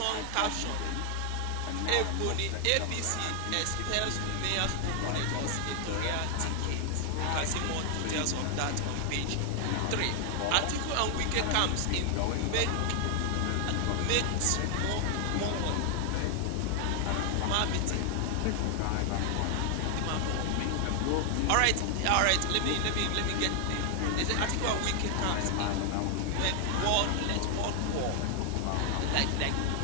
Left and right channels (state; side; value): different; both; correlation 0.00